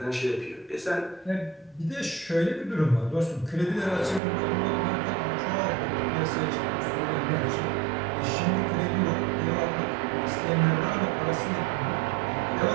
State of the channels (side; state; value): left; drops out; at 4.2 s